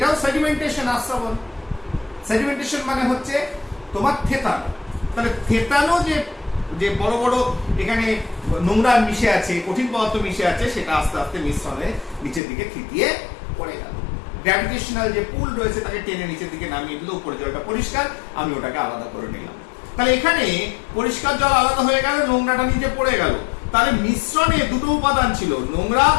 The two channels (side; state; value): right; drops out; at 12.4 s